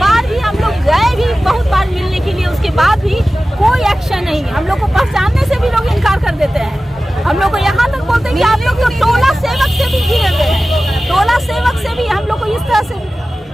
भी हम लोग गए भी बहुत बार मिलने के लिए, उसके बाद भी कोई एक्शन नहीं। हम लोग को पहचानने से भी लोग इनकार कर देते हैं। हम लोग को यहाँ तक बोलते हैं कि आप लोग तो टोला सेवक से भी घिरे हुए हैं, टोला सेवक से भी हम लोग को इस तरह से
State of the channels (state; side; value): normal; both; correlation 0.96